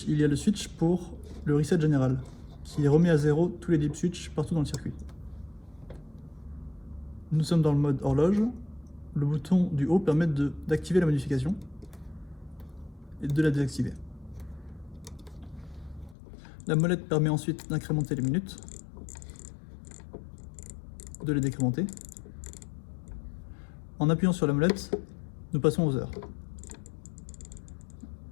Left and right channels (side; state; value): right; drops out; at 16.2 s